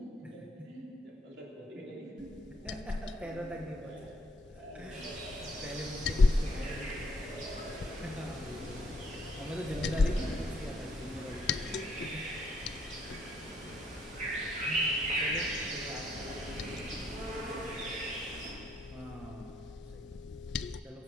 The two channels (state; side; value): normal; both; correlation 0.70